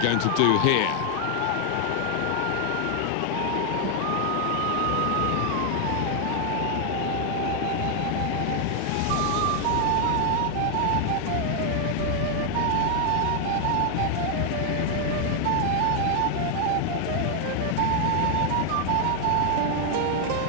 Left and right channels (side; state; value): both; different; correlation 0.00